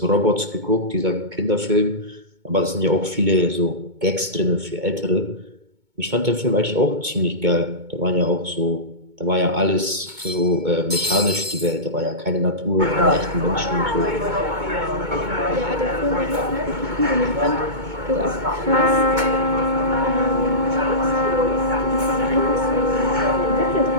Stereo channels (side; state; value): left; late; 2.2 ms